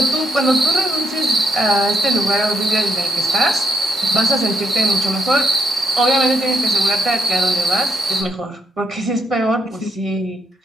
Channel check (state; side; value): normal; both; correlation 0.77